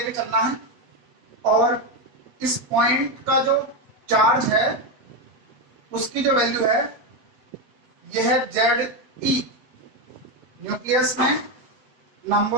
चलना है और इस पॉइंट का जो चार्ज है उसकी जो वैल्यू है यह है Ze। न्यूक्लियस में नंबर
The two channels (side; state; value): left; late; 8.3 ms